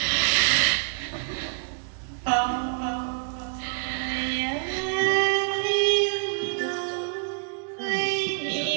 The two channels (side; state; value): left; silent; digital silence